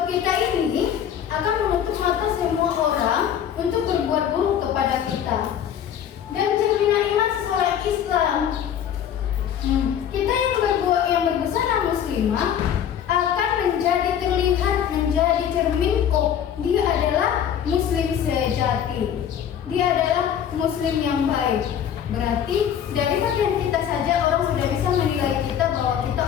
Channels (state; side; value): quieter; right; 9.3 dB